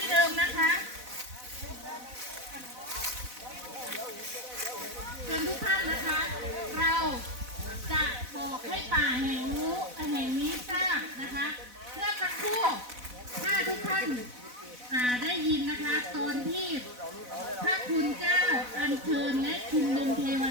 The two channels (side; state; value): left; late; 4.0 ms